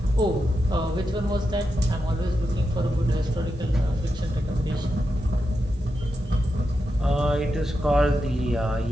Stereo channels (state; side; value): normal; both; correlation 0.87